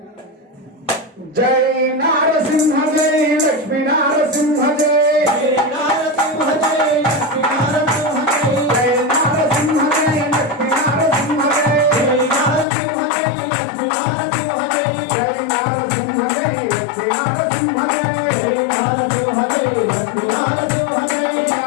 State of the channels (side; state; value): right; drops out; at 12.7 s